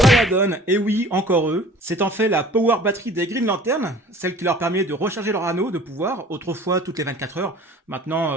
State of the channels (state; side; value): normal; both; correlation 0.47